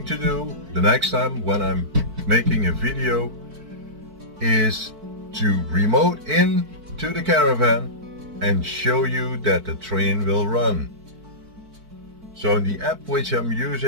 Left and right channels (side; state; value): left; late; 4.5 ms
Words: to do the next time when I'm making a video is to remote in to the Caravan and show you that the train will run. So the app which I'm